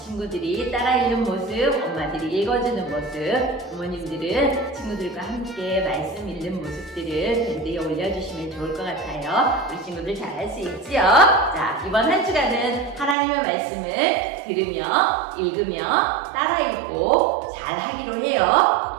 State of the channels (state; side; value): drops out; left; at 13.2 s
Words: 따라 읽는 모습, 엄마들이 읽어주는 모습, 부모님들은 친구들과 함께 말씀 읽는 모습들을 밴드에 올려주시면 좋을 것 같아요. 우리 친구들 잘할 수 있지요? 자, 이번 한 주간은 하나님의 말씀을 들으며 읽으며 따라 읽고 잘 하기로 해요.